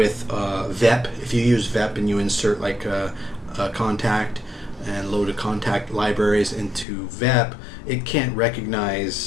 VEP. If you use VEP and you insert like a contact and load of contact libraries into VEP, it can't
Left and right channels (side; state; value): right; drops out; at 6.9 s